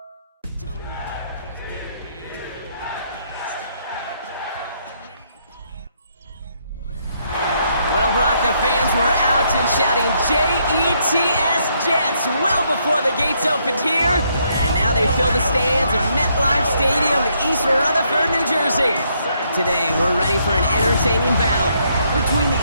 Well, Brock, the fans were out and shouting J-E-T-S Jets well before the gates opened here. And now they fill the stands of MetLife Stadium in East Rutherford, New Jersey. Today, we're ready for an entertaining battle between the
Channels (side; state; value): both; inverted; correlation -0.73